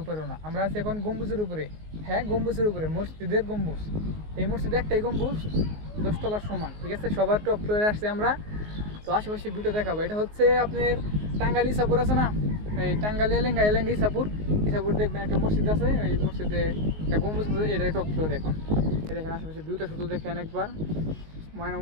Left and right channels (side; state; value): left; late; 19 ms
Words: উপরেও না। আমরা আছি এখন গম্বুজের উপরে। হ্যাঁ, গম্বুজের উপরে, মসজিদের গম্বুজ। এই মসজিদে একটাই গম্বুজ, 10 তলার সমান। ঠিক আছে, সবার টপ ফ্লোরে আসছে আমরা। তো আশেপাশে ভিডিও দেখাবো। এটা হচ্ছে আপনার টাঙ্গাইল ইসাপুর আছে না, এই টাঙ্গাইল এলেঙ্গা ইসাপুর দেখবেন একটা মসজিদ আছে। ওই মসজিদে একটা গম্বুজ আছে, এটাই টপ ফ্লোর। এখন এই দেখেন আশেপাশে ভিউটা শুধু দেখেন একবার, মানে